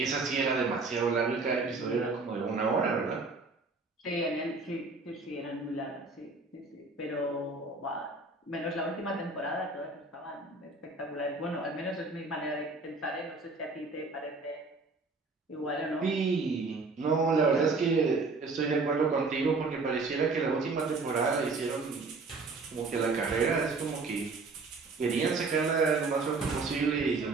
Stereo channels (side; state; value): left; quieter; 3.8 dB